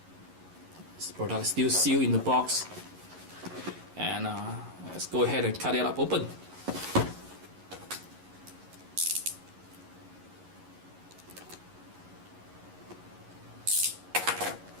This product is still sealed in the box, and let's go ahead and cut it up open.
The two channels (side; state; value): left; late; 11 ms